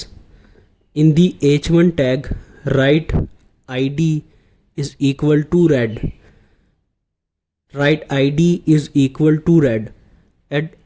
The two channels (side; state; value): both; identical; correlation 1.00